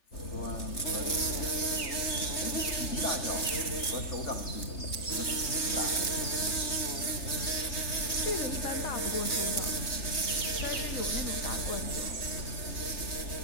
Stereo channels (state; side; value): late; right; 3.2 ms